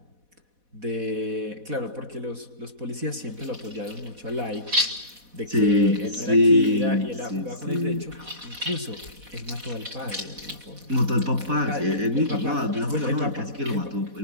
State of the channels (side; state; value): left; late; 4.1 ms